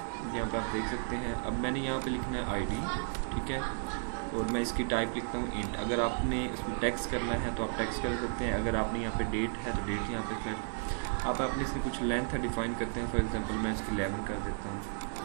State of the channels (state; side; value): silent; left; 55 dB below the other